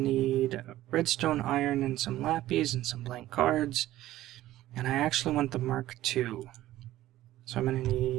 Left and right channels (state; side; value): quieter; left; 14.8 dB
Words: redstone, iron, and some lapis and some blank cards. And I actually want the Mark II. So I'm going to